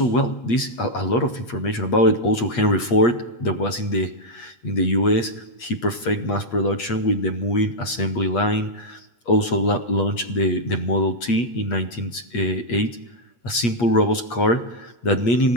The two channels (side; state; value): right; late; 8.4 ms